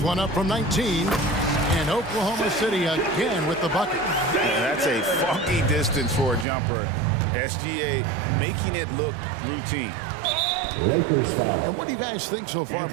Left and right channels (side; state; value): left; drops out; at 6.5 s